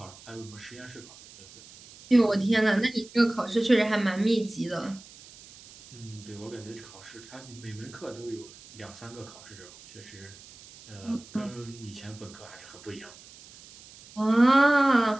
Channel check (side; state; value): right; noise; hiss, 20 dB below the sound